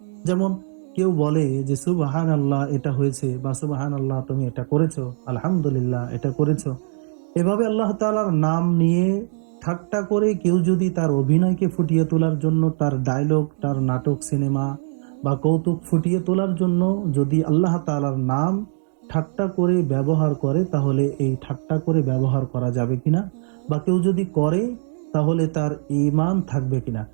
যেমন কেউ বলে যে সুবহান আল্লাহ এটা হয়েছে, বা সুবহান আল্লাহ তুমি এটা করেছো, আলহামদুলিল্লাহ এটা করেছো। এভাবে আল্লাহ তাআলার নাম নিয়ে ঠাট্টা করে কেউ যদি তার অভিনয়কে ফুটিয়ে তোলার জন্য, তার ডায়লগ, তার নাটক, সিনেমা বা কৌতুক ফুটিয়ে তোলার জন্য যদি আল্লাহ তাআলার নাম ঠাট্টা করে ব্যবহার করে, তাহলে এই ঠাট্টা করে ব্যবহার করা যাবে কিনা, বা কেউ যদি করে তাহলে তার ঈমান থাকবে কিনা,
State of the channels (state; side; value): silent; left; digital silence